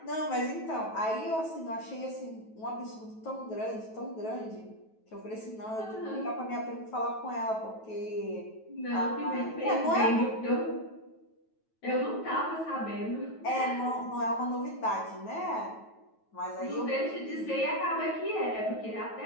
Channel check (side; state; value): right; late; 9.2 ms